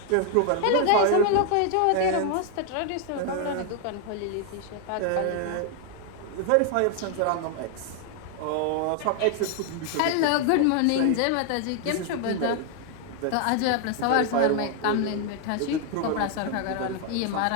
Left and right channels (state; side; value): different; both; correlation 0.00